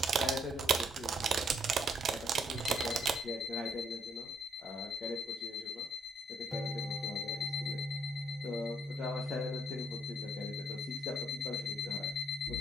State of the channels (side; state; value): both; normal; correlation 0.68